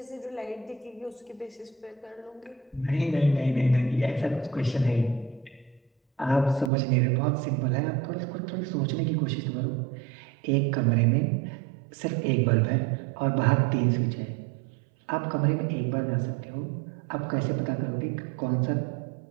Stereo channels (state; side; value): drops out; left; at 6.7 s